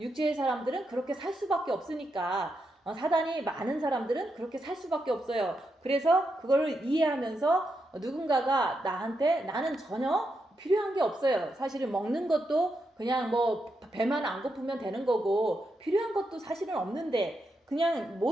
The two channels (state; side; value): normal; both; correlation 0.84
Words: 사람들은 그렇게 살 수밖에 없으니까 사단이 많은 사람들은 그렇게 살 수밖에 없어요. 그래서 그거를 이해하면서 누군가가 나한테 나는 전혀 필요한 게 없어요. 사실은 먹는 것도 그냥 뭐 배만 안 고프면 되는 거고 필요한 것도 사실은 없는데 그냥